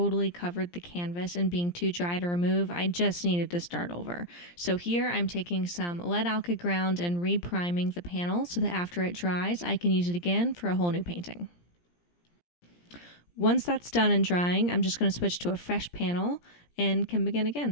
covered the canvas and being too dry to remove, I just needed to start over. So here I'm taking some lead alkyd ground and re-priming the panel so that after it dries, I can use it again for a whole new painting. Once that's done and drying, I'm just going to switch to a fresh panel and can begin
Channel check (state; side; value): late; right; 17 ms